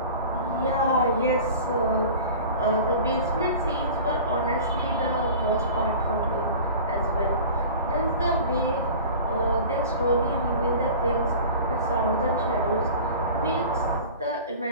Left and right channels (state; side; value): inverted; both; correlation -0.38